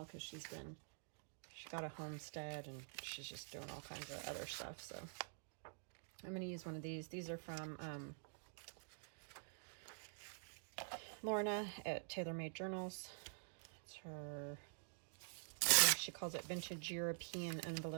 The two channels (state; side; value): silent; left; digital silence